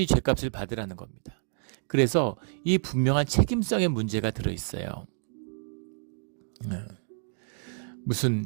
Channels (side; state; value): left; silent; digital silence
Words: 죄값을 받으라는 겁니다. 그래서 이 분명한 책임성의 문제가 들어있어요.